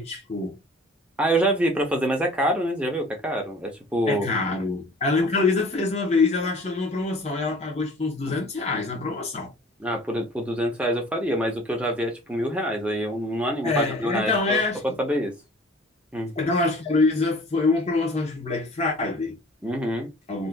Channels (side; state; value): both; normal; correlation 0.48